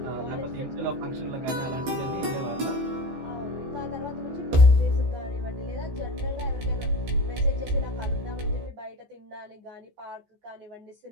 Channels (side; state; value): left; late; 14 ms